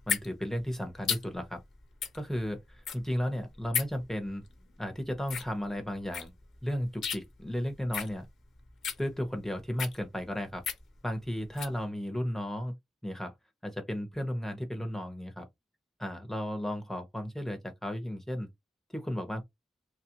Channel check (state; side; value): normal; both; correlation 0.90